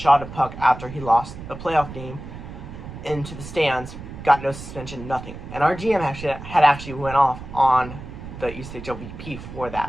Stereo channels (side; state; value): right; noise; rumble, 12 dB below the sound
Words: a puck after he lost a playoff game into the stands, got no suspension, nothing. And our GM actually went off on the ECHL VP for